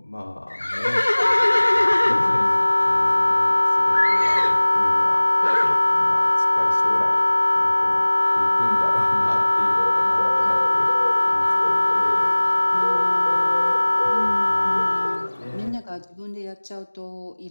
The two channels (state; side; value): inverted; both; correlation -1.00